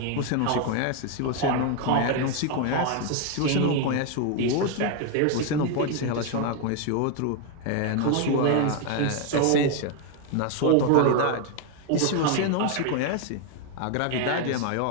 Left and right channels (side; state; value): both; different; correlation 0.01